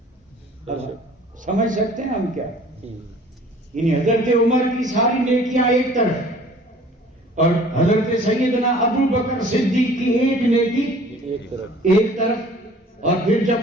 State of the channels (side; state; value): both; normal; correlation 0.50